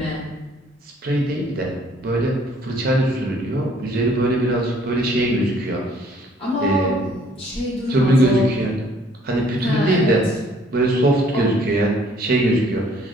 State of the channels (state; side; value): normal; both; correlation 0.60